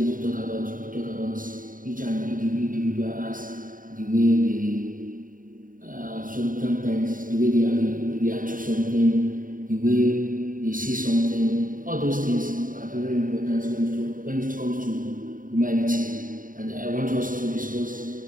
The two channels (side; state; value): left; late; 0.39 ms